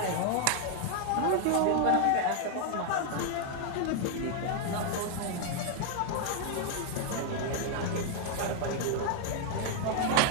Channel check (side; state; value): both; different; correlation 0.00